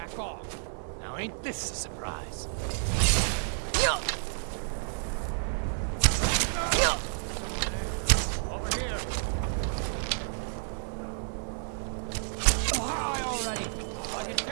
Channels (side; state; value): left; silent; digital silence